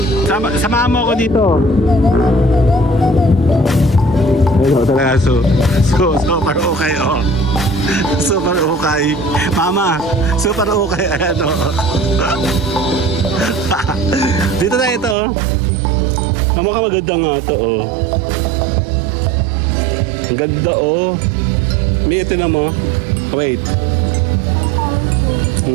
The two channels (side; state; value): left; drops out; at 15.2 s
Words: Samahan mo ako dito. Ayun, talaga. Super okay, oh. Super okay. Mama, super okay. Ayan, oh. Dito na ito, oh. Mukha maganda nga ito, oh. Ang ganda, oh. May ito na mo. Wait.